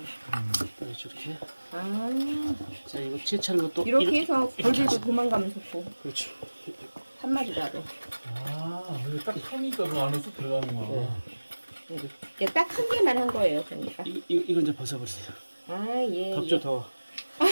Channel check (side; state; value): both; inverted; correlation -1.00